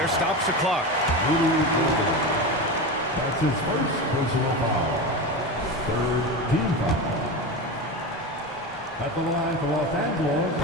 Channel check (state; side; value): normal; both; correlation 0.22